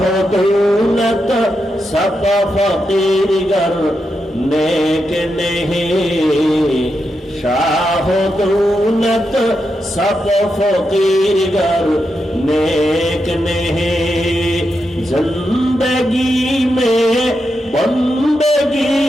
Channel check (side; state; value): both; normal; correlation 0.85